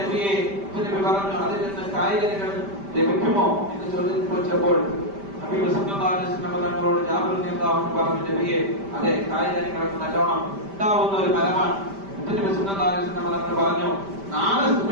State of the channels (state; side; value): late; left; 5.1 ms